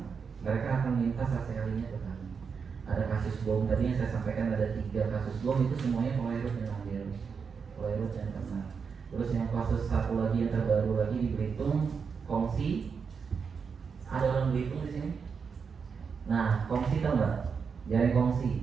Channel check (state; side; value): quieter; left; 5.9 dB